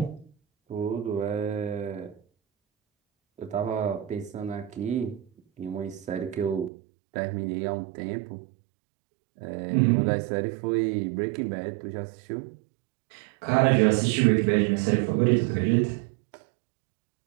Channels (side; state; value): left; drops out; at 6.7 s